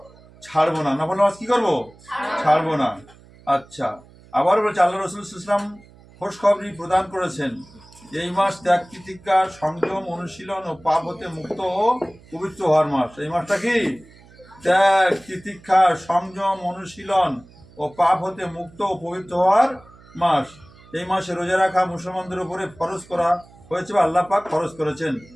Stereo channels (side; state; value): right; noise; hum, 24 dB below the sound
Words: ছাড়বো না। নফল নামাজ কি করবো? ছাড়বো না। আচ্ছা, আবার বলছে আল্লাহ রাসূল সাল্লাল্লাহু আলাইহি ওয়াসাল্লাম খোশখবরি প্রদান করেছেন, এই মাস ত্যাগ তিতিক্ষা, সংযম, অনুশীলন ও পাপ হতে মুক্ত ও পবিত্র হওয়ার মাস। এই মাসটা কি? ত্যাগ তিতিক্ষা, সংযম, অনুশীলন ও পাপ হতে মুক্ত ও পবিত্র হওয়ার মাস। এই মাসে রোজা রাখা মুসলমানদের উপরে ফরজ করা হয়েছে বা আল্লাহ পাক ফরজ করেছেন।